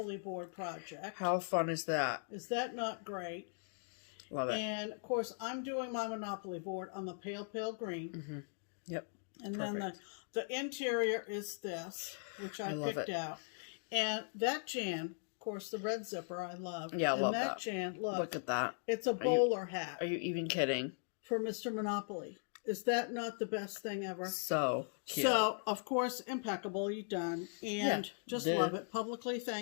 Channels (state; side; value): silent; right; digital silence